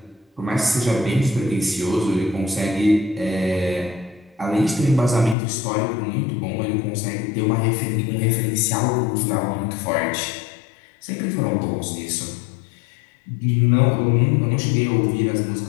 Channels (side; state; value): right; drops out; at 5.4 s